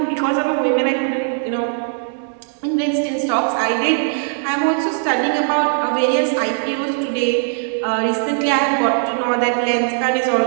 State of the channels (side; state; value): left; silent; digital silence